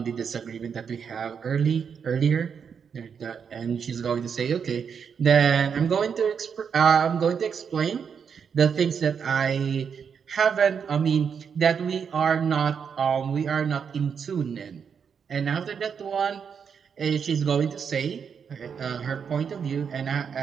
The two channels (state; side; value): quieter; left; 6.8 dB